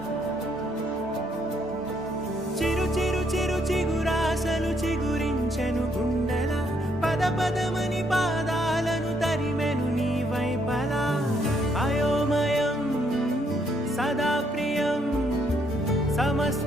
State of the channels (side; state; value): both; normal; correlation 0.71